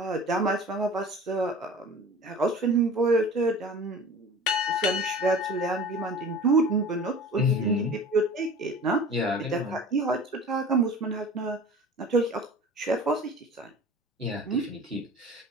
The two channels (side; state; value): both; normal; correlation 0.40